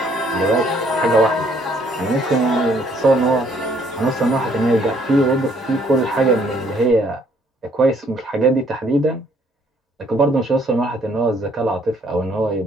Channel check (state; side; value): normal; both; correlation 0.65